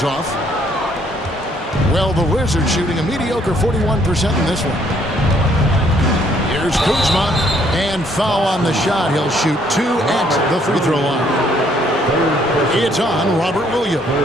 off. Well, the Wizards shooting a mediocre 41% in this one. Here's Kuzma. And foul on the shot. He'll shoot 2 at the free throw line. It's on Robert Williams.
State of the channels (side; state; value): both; normal; correlation 0.66